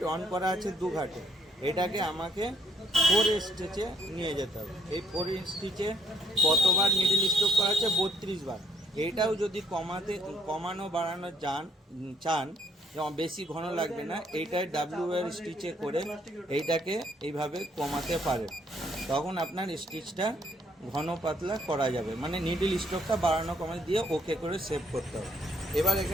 অন করা আছে 2 ঘাটে, এটাকে আমাকে 4 স্টিচে নিয়ে যেতে হবে। এই 4 স্টিচে কতবার মিডিল স্ট্রোক করা আছে? 32 বার। এটাও যদি কমানো বাড়ানো চান, যেমন বেশি ঘন লাগবে না, এইটাই ডাব্লিউ এর স্টিচে করে এইটাকে এইভাবে কমাতে পারেন। তখন আপনার স্টিচটা ঘন পাতলা করা যাবে, মানে নিডল স্ট্রোকটা বাড়ানো কমানো দিয়ে ওকে করে সেভ করতে হবে। এবার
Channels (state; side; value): normal; both; correlation 0.67